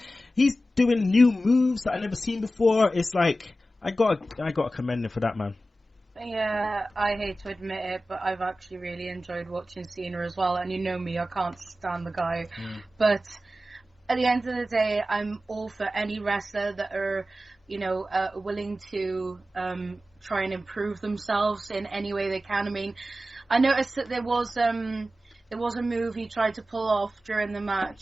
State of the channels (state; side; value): normal; both; correlation 0.94